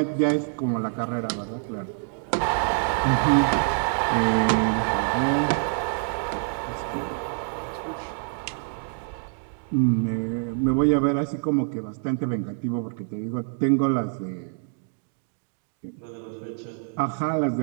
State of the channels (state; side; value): silent; left; digital silence